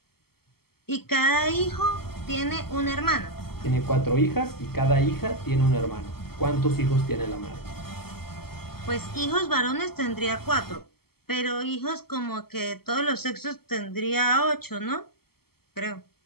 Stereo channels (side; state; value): right; late; 0.95 ms